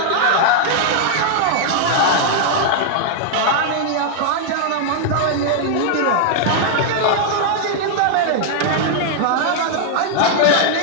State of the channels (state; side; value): different; both; correlation -0.01